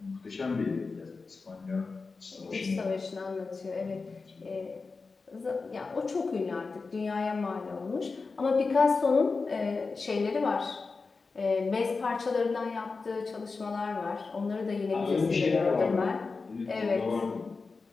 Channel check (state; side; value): quieter; right; 4.3 dB